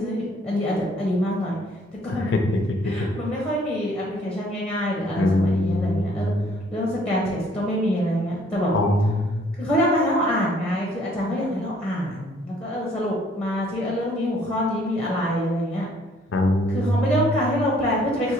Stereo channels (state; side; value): normal; both; correlation 0.62